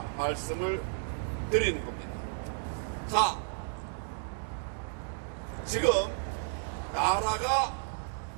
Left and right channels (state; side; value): silent; left; digital silence